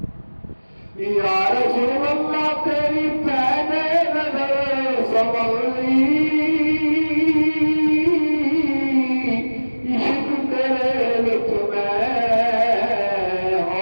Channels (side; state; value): both; inverted; correlation -1.00